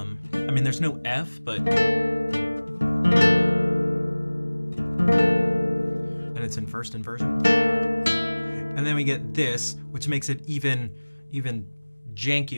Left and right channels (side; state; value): both; inverted; correlation -1.00